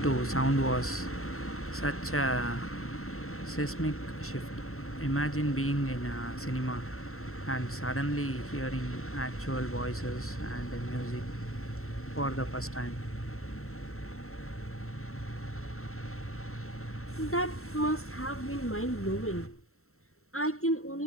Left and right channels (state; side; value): late; right; 0.63 ms